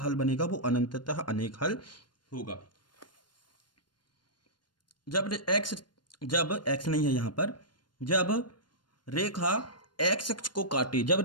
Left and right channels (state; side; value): late; right; 0.71 ms